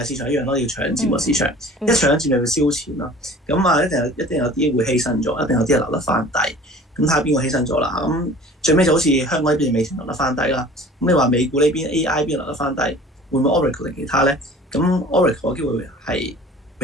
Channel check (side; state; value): both; normal; correlation 0.46